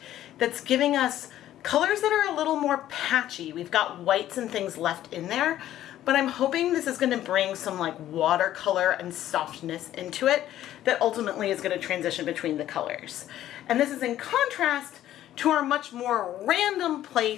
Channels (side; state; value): right; quieter; 12.7 dB